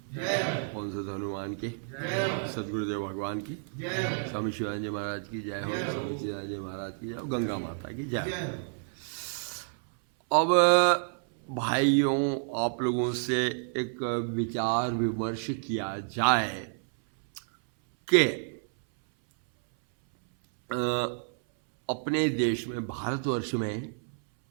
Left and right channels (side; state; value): left; silent; 58 dB below the other